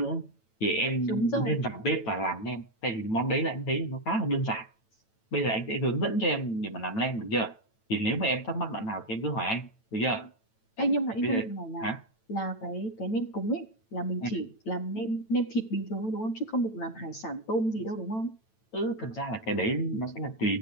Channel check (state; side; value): late; right; 9.0 ms